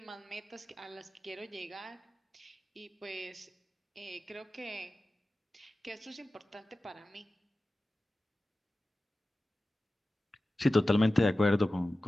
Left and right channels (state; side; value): normal; both; correlation 0.95